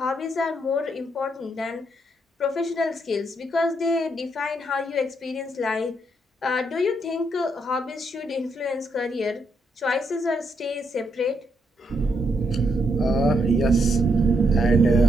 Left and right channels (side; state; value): both; normal; correlation 0.77